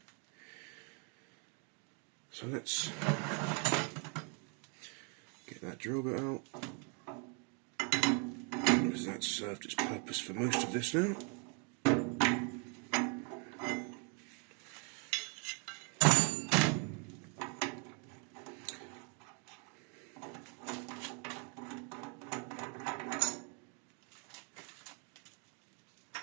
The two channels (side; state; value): left; quieter; 37.2 dB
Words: So let's get that drill bit out, because that's served its purpose for most of this now.